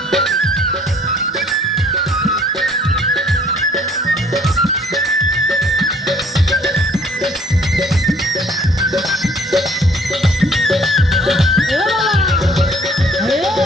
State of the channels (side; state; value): both; normal; correlation 0.58